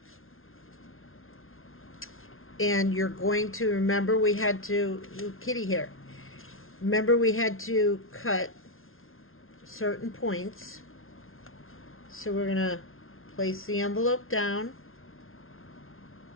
and you're going to remember we had to, kitty here, remember we had to cut certain points. So we're going to place the envelope down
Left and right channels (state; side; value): late; right; 0.61 ms